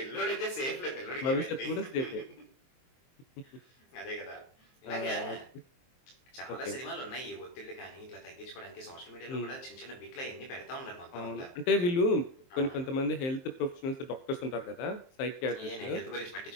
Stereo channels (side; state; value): right; late; 23 ms